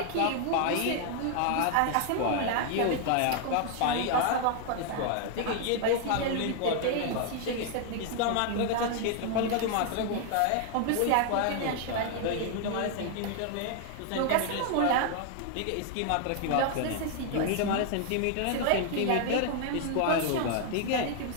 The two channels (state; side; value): different; both; correlation 0.00